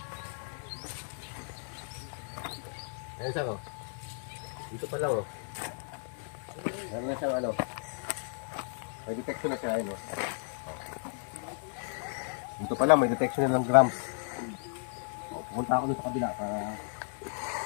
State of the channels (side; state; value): right; silent; 55 dB below the other